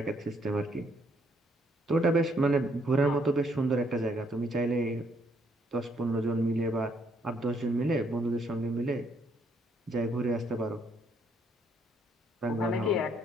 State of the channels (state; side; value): normal; both; correlation 0.70